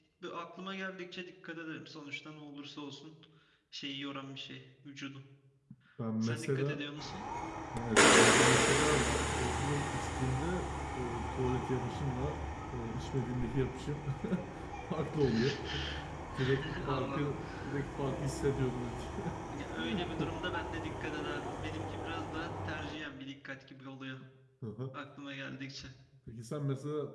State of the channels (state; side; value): identical; both; correlation 1.00